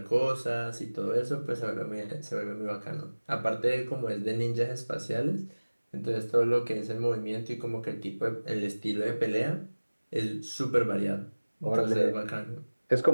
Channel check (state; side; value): inverted; both; correlation -1.00